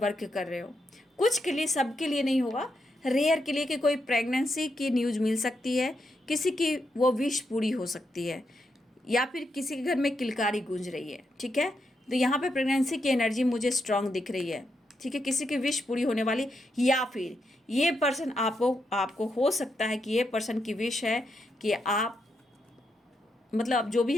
कर रहे हो। कुछ के लिए, सबके लिए नहीं होगा, रेयर के लिए कि कोई प्रेगनेंसी की न्यूज़ मिल सकती है, किसी की वो विश पूरी हो सकती है, या फिर किसी के घर में किलकारी गूंज रही है, ठीक है। तो यहाँ पे प्रेगनेंसी की एनर्जी मुझे स्ट्रांग दिख रही है, ठीक है, किसी की विश पूरी होने वाली, या फिर ये पर्सन आपको हो सकता है कि ये पर्सन की विश है कि आप, मतलब जो भी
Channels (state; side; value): normal; both; correlation 0.82